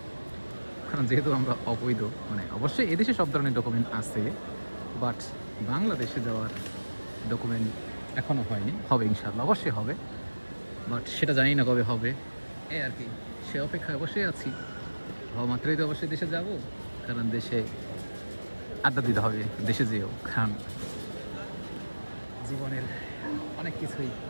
কারণ যেহেতু আমরা অবৈধ। মানে অবশ্যই এদেশে সব ধরনের ডকুমেন্ট আছে, বাট বাংলাদেশে যাওয়ার ডকুমেন্ট এখনও হয়নি, হবে ইনশাআল্লাহ, অবশ্যই হবে, বাট সেটা জানি না কবে হবে। এই আর কি, সে অপেক্ষায় অবশ্যই আছি। হওয়া মাত্রই তো অবশ্যই দেশে যাব, কারণ দেশে আড্ডা দিতে হবে দেশে যেও, কারণ জীবনের অনেক কিছুই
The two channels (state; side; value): inverted; both; correlation -1.00